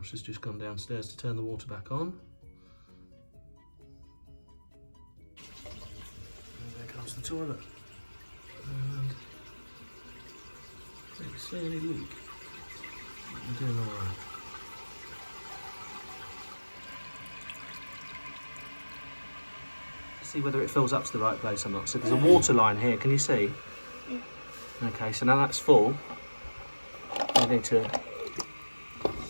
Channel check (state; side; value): inverted; both; correlation -1.00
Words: has just gone downstairs to turn the water back on. And there comes the toilet. And don't see any leak. We're doing all right. See whether it fills up to the right place or not. So there's a water line here, can you see? Yeah. Okay, so now that's full. You need to...